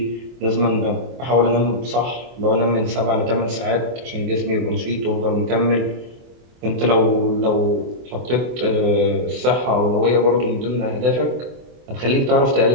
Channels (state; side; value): late; left; 24 ms